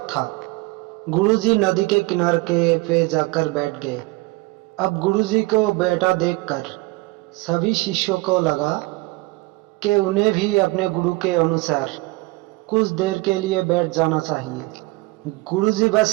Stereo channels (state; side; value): quieter; left; 22.6 dB